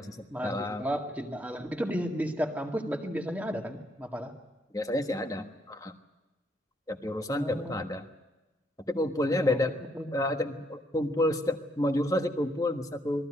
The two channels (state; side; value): normal; both; correlation 0.72